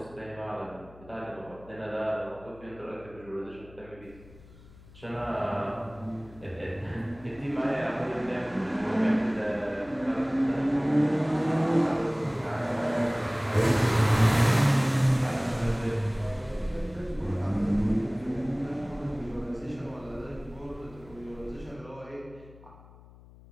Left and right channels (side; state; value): left; noise; hum, 22 dB below the sound